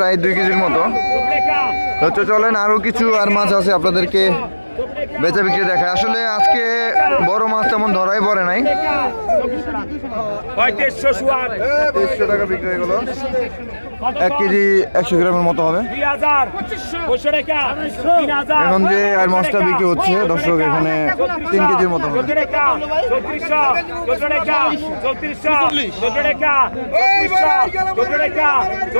2 কেজির মতো। তো চলেন আরো কিছু আর মাছ আছে আপনাদেরকে বেচা বিক্রি দেখায়। আসলে আজকে বড় মাছ তেমন ধরাই পড়ে নাই। 2300 টাকা বিক্রি হয়ে গেল, 1 কেজি 100 গ্রামের মতো হবে। এখন যে আর মাছটা বিক্রি হচ্ছে দর্শক এখানে 3 কেজির মতো হবে।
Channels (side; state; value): both; inverted; correlation -1.00